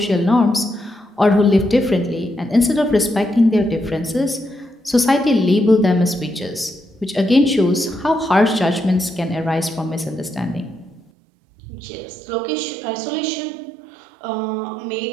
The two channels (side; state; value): left; drops out; at 11.0 s